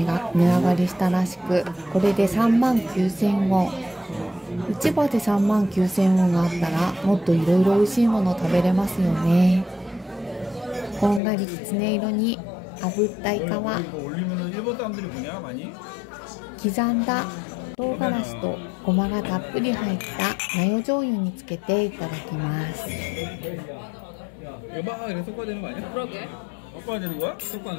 上がりしたらしく、これで39,000ウォン。市場で39,000ウォンがあったらもっといろいろ美味しいもの食べれますよね。こんがりきつね色に炙ったイカは刻んだ唐辛子とごまがたっぷり入ったマヨ醤油につけていただきます。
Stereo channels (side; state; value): right; drops out; at 11.2 s